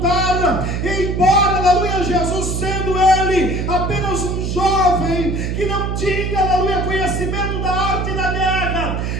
e embora, aleluia, Jesus sendo ele apenas um jovem, que não tinha, aleluia, conhecimento da arte da guerra,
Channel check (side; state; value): right; noise; hum, 2 dB below the sound